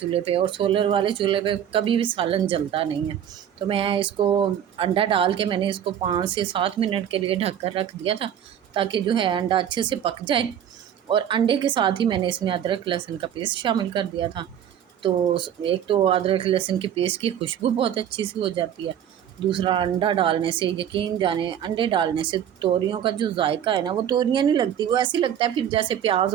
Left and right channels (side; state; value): left; quieter; 9.7 dB